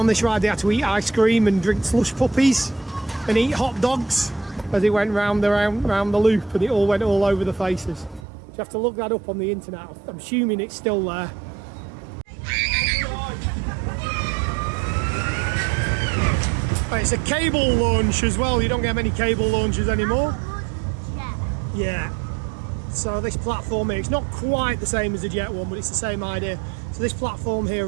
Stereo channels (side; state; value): left; drops out; at 8.2 s